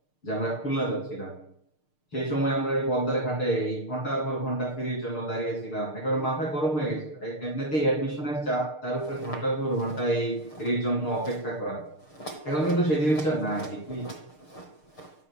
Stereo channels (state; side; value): late; right; 6.6 ms